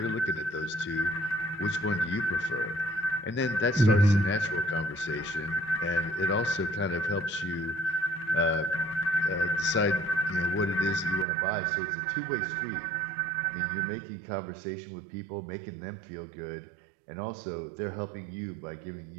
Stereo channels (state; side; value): drops out; left; at 11.2 s